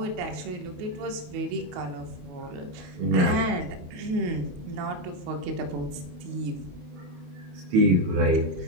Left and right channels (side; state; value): left; late; 28 ms